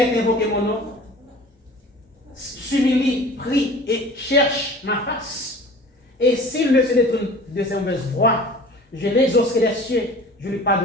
invoqué mon nom, s'humilie, prie et cherche ma face, et s'il ne se détourne de ses mauvaises voies, je l'exaucerai des cieux, je lui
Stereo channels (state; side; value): normal; both; correlation 0.43